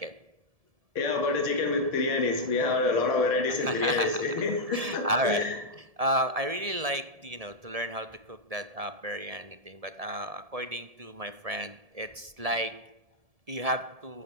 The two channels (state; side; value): late; left; 1.7 ms